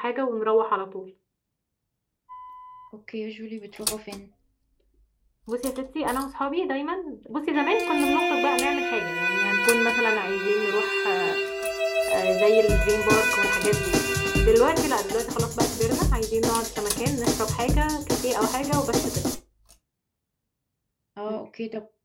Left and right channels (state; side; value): identical; both; correlation 1.00